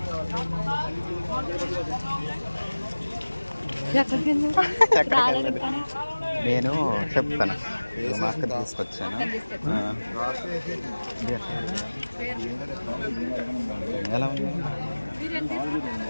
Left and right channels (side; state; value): both; inverted; correlation -1.00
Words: నేను చెప్తాను. మా అక్క తీసుకొచ్చాను. ఎలా ఉంది?